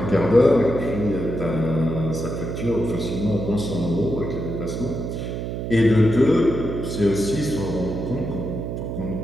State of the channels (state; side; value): noise; right; hum, 4 dB below the sound